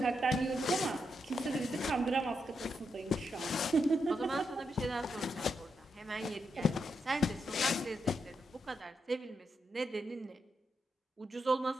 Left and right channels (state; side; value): normal; both; correlation 0.83